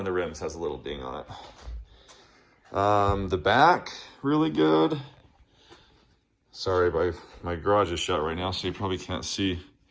the rims has a little ding on it. The back, really good. Sorry, my garage is shut right now, so you probably can't see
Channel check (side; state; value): both; identical; correlation 1.00